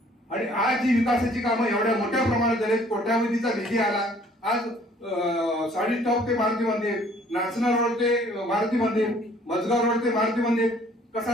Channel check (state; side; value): normal; both; correlation 0.58